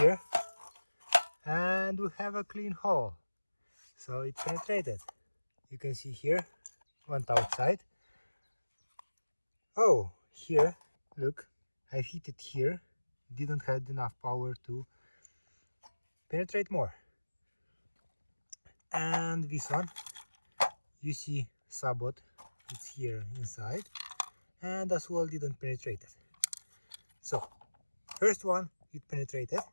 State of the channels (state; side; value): inverted; both; correlation -1.00